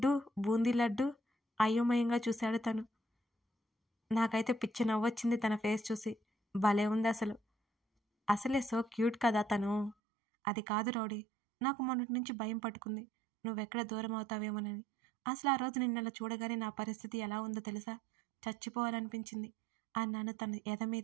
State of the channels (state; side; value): drops out; left; at 10.0 s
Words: బూందీ లడ్డు అయోమయంగా చూశాడు తను. నాకైతే పిచ్చి నవ్వొచ్చింది తన ఫేస్ చూసి. భలే ఉంది అసలే సో క్యూట్ కదా తను. అది కాదు రౌడీ, నాకు మొన్నటి నుంచి భయం పట్టుకుంది, నువ్వెక్కడ దూరం అవుతావేమోనని. అసలు ఆ రోజు నిన్నలా చూడగానే నా పరిస్థితి ఎలా ఉందో తెలుసా? చచ్చిపోవాలనిపించింది అన్నాను తన ఎద